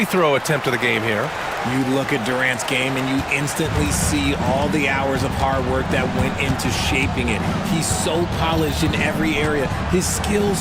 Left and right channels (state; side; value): identical; both; correlation 1.00